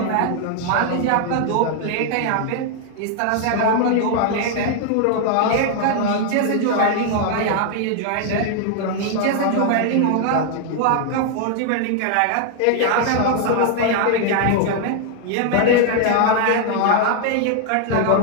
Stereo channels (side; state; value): both; different; correlation 0.00